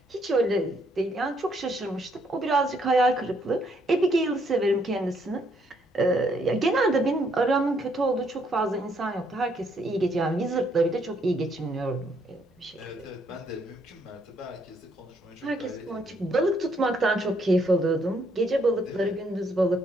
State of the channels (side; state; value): both; normal; correlation 0.71